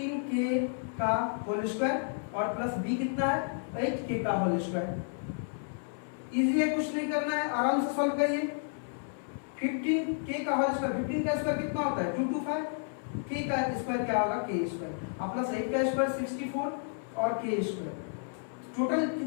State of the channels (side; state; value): right; silent; 57 dB below the other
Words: का होल स्क्वायर, और प्लस b कितना है? 8k का होल स्क्वायर। इजी है, कुछ नहीं करना है, आराम से सॉल्व करिए। 15k का होल स्क्वायर, 15 का स्क्वायर कितना होता है? 225। k का स्क्वायर क्या होगा? k स्क्वायर, और प्लस 8 का स्क्वायर 64, और k स्क्वायर। टोटल